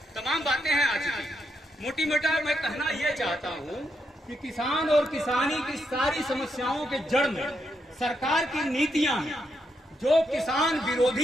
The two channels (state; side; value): normal; both; correlation 0.80